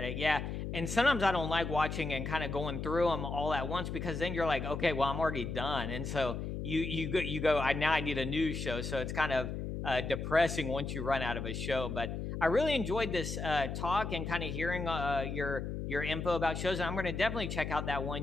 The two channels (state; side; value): noise; left; hum, 4 dB below the sound